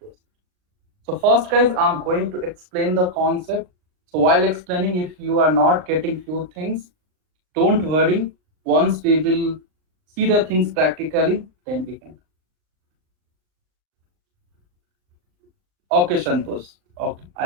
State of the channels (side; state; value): left; late; 38 ms